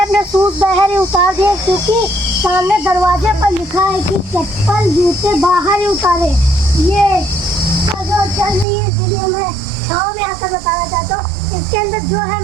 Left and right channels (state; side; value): drops out; left; at 8.7 s